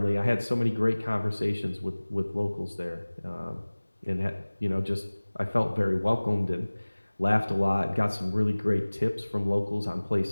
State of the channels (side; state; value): both; inverted; correlation -1.00